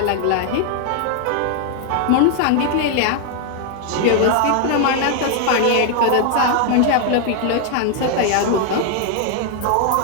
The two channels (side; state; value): both; different; correlation 0.00